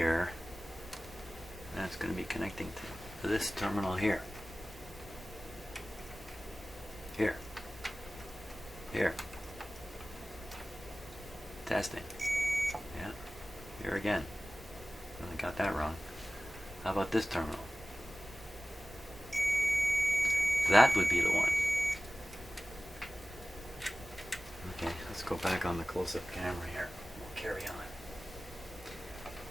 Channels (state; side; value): normal; both; correlation 0.97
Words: That's going to be connecting to this terminal here. Here. Testing. Yeah. Here again. I got that wrong. How about this terminal? That would be the one. Okay, let's go back on the close-up camera here. We'll carry on.